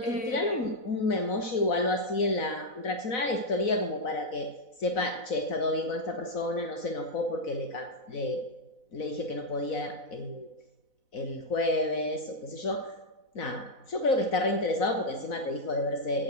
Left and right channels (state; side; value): late; right; 4.0 ms